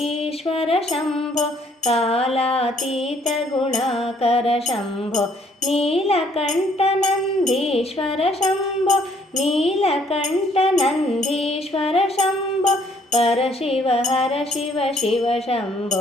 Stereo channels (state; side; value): normal; both; correlation 0.64